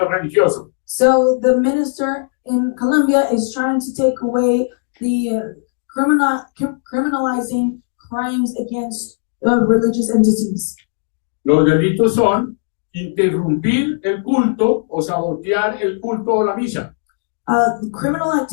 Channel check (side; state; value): right; silent; digital silence